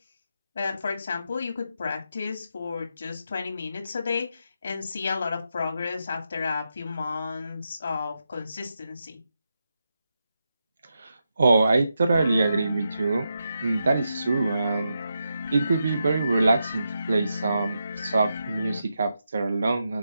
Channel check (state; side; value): inverted; both; correlation -0.86